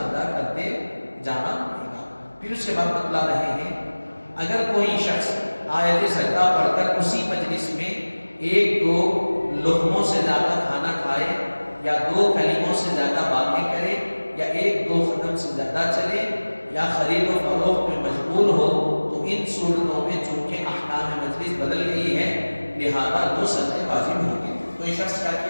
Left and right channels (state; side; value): inverted; both; correlation -1.00